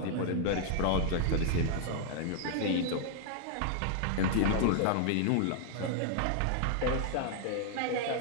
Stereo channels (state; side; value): different; both; correlation 0.00